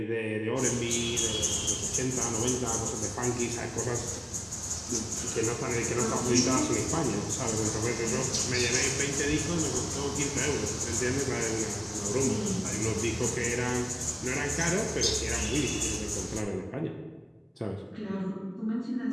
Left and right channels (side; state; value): both; identical; correlation 1.00